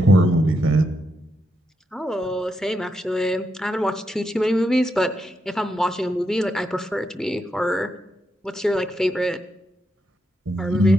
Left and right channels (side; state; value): both; normal; correlation 0.83